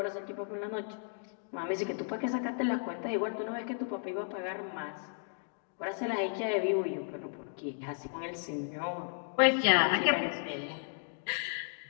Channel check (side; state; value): right; silent; digital silence